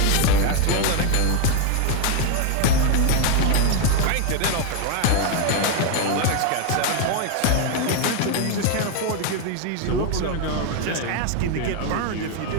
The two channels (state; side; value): different; both; correlation 0.01